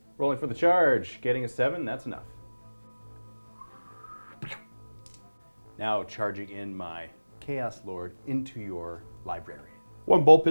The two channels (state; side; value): inverted; both; correlation -1.00